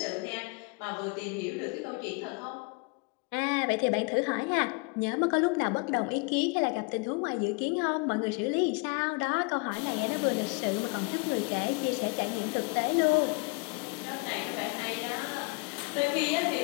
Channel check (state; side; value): quieter; right; 30.8 dB